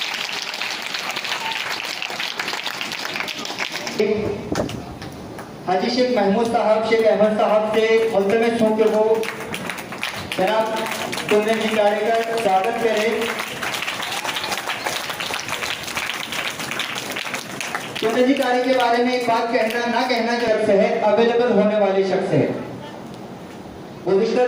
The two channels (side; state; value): both; identical; correlation 1.00